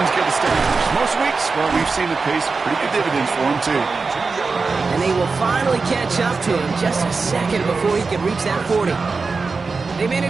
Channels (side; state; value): left; quieter; 4.4 dB